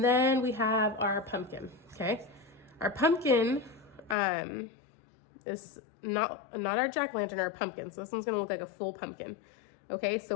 then we have our pumpkin, okay? Our pumpkin is not our jack-o'-lantern, our pumpkin. So this one's gonna look like a full pumpkin. Okay, so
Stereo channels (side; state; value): right; drops out; at 4.2 s